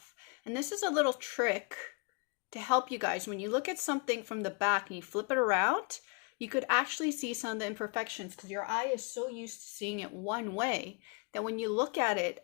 And this is a little trick to help you guys. When you look at something from the back and you flip it around, you could actually see some of the imperfections because your eye is so used to seeing it one way that when you look at it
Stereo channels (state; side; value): quieter; right; 33.6 dB